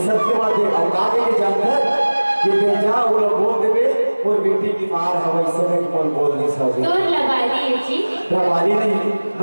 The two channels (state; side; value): inverted; both; correlation -1.00